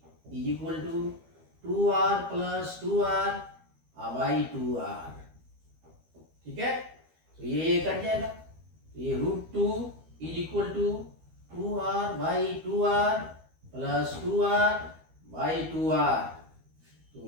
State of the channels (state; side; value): late; left; 12 ms